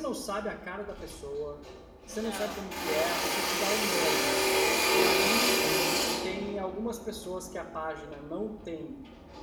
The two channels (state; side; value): identical; both; correlation 1.00